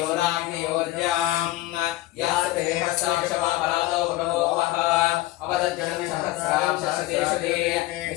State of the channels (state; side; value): quieter; right; 17.0 dB